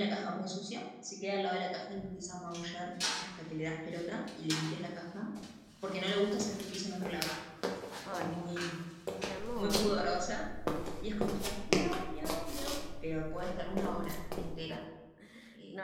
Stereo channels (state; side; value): identical; both; correlation 1.00